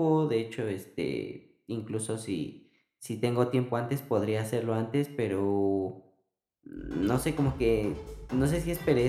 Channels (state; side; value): identical; both; correlation 1.00